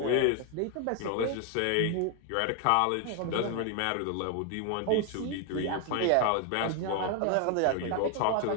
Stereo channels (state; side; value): different; both; correlation 0.00